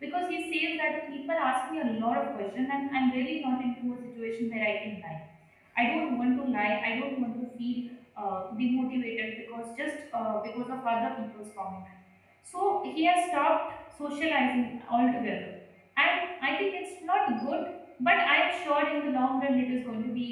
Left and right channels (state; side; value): identical; both; correlation 1.00